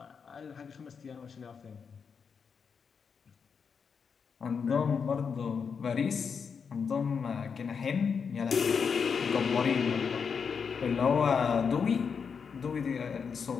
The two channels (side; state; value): right; quieter; 6.1 dB